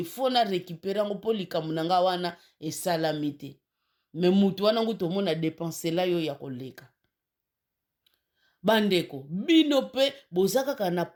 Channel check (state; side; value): identical; both; correlation 1.00